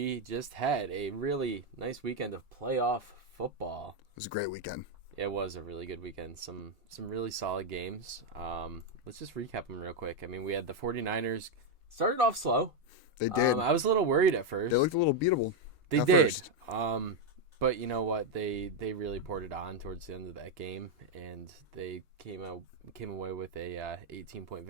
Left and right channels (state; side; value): normal; both; correlation 0.03